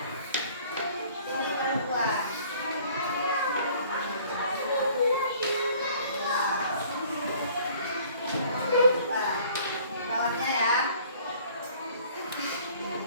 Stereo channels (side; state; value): both; inverted; correlation -0.54